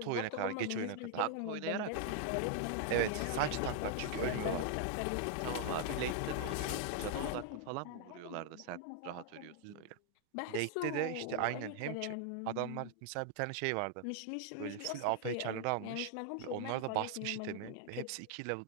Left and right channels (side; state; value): both; different; correlation 0.00